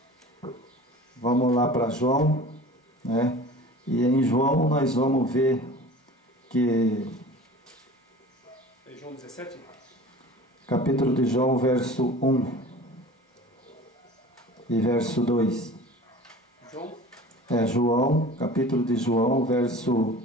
Vamos lá para João, né? E em João nós vamos ver que... É João 17? Capítulo de João, verso 1 e verso 2. João, capítulo de João, verso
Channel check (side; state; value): both; normal; correlation 0.41